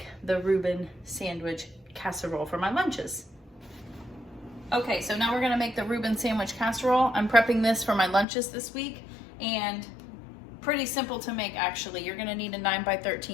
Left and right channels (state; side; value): drops out; right; at 8.2 s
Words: the Reuben sandwich casserole for my lunches. Okay, so now we're gonna make the Reuben sandwich casserole. I'm prepping this for my lunches this week, and pretty simple to make actually. You're gonna need a